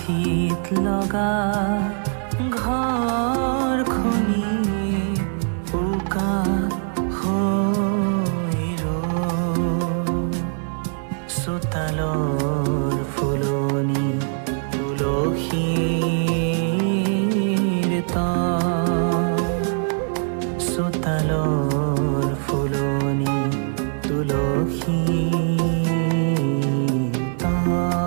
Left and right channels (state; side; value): silent; left; 59 dB below the other